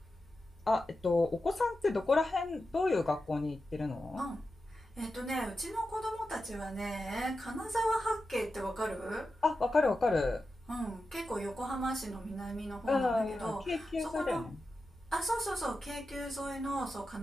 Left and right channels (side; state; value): both; normal; correlation 0.91